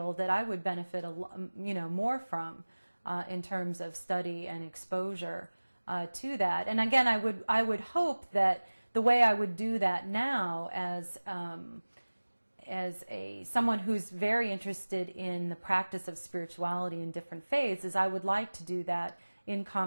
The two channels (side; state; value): both; inverted; correlation -1.00